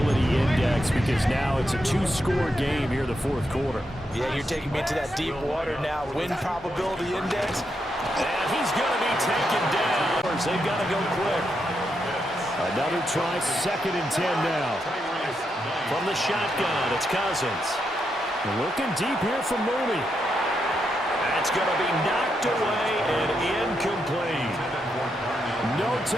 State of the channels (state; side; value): normal; both; correlation 0.82